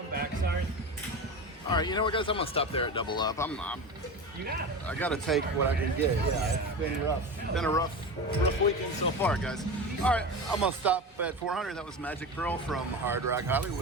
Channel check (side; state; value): both; normal; correlation 0.26